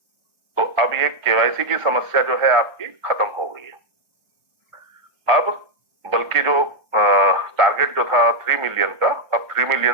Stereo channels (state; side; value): late; left; 1.5 ms